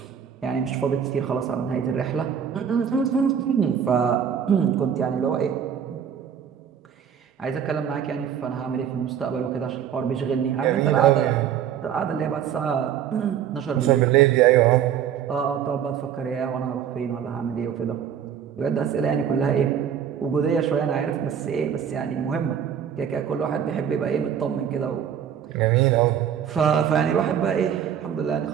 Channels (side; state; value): left; quieter; 8.7 dB